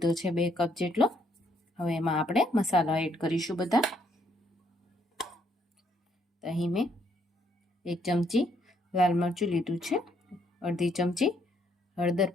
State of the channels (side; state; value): both; normal; correlation 0.71